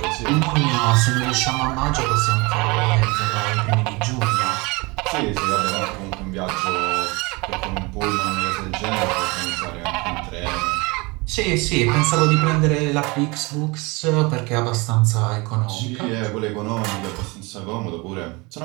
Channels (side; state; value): left; quieter; 25.9 dB